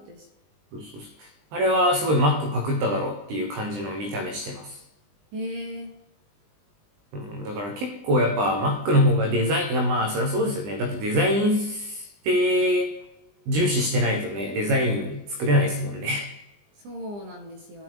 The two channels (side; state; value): left; late; 20 ms